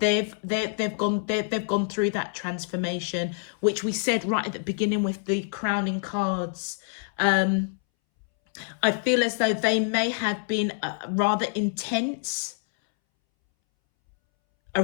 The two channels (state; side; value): silent; right; 61 dB below the other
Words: gone through that transformation, which we said right at the beginning with the crowning cards. I feel as though they may have been rather intense